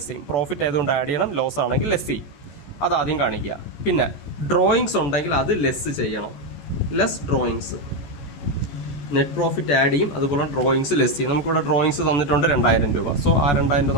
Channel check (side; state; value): right; late; 14 ms